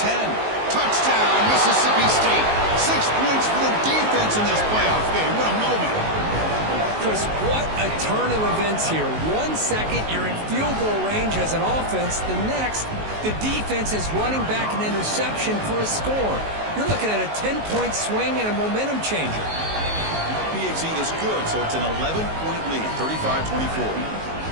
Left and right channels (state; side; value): late; left; 19 ms